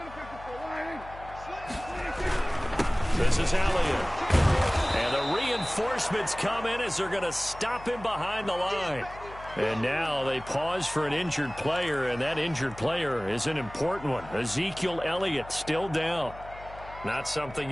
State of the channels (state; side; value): noise; left; hum, 17 dB below the sound